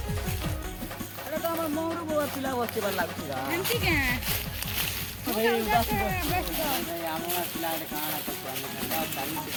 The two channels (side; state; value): both; identical; correlation 1.00